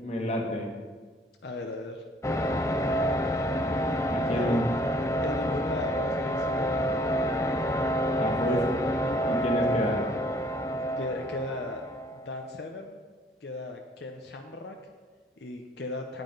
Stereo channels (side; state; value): both; normal; correlation 0.58